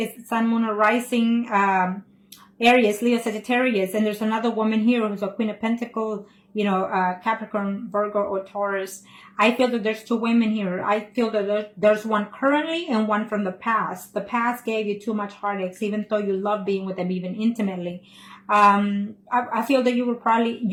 Sun, Moon, or Rising, Aries, Leo, Sagittarius. And there's another woman here who's a Queen of Pentacles, you know, Capricorn, Virgo, or Taurus. I feel that there's two women here. I feel that there's one currently and one from the past. The past gave you too much heartaches, even though you love being with them, even intimately. I feel that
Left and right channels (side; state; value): both; identical; correlation 1.00